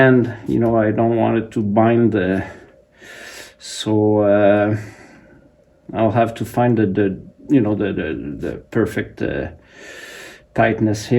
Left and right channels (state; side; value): identical; both; correlation 1.00